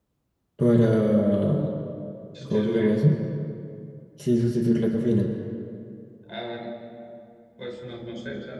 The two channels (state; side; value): identical; both; correlation 1.00